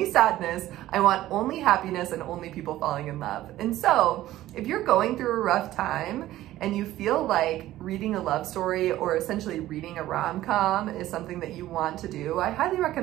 sadness. I want only happiness and only people falling in love. And so if you're going through a rough time and you feel like reading a love story or essentially reading a rom-com is something that you want to do, I highly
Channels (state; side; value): quieter; left; 14.8 dB